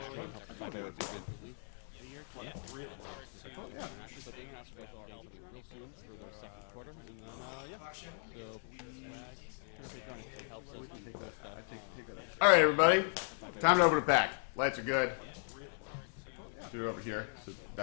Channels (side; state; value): right; silent; digital silence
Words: us buy better equipment. Really. Actually, but the international guys will be getting something real soon for their second quarter, and then Actually, I want to get a picture that's actually decent. helps us do cool stuff. All right, everybody, time to open it back. Lights are good. Do it over here, so